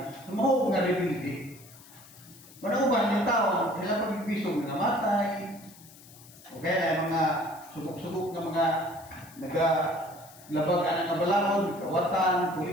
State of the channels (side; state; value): left; noise; hiss, 22 dB below the sound